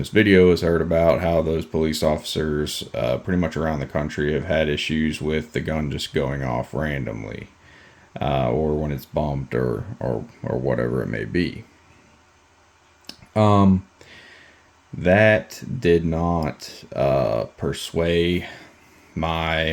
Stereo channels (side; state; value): both; identical; correlation 1.00